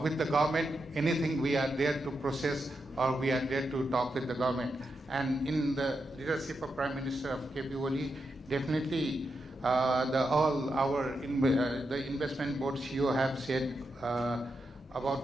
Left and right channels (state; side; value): normal; both; correlation 0.86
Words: with the government, anything we are there to process or we are there to talk with the government. And in the leadership of Prime Minister of KP Oli, definitely the investment board CEO have said